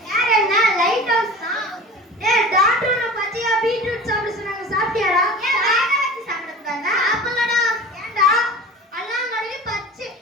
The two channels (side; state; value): both; normal; correlation 0.37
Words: யார் என்ன லைட் ஹவுஸ் தான். டேய் டாக்டர் நான் பச்சையா பீட்ரூட் சாப்பிட சொன்னாங்க, சாப்பிட்டியாடா? ஏன் வேக வச்சு சாப்பிட கூடாதா? அப்பலடா ஏன்டா அல்லாங்கடி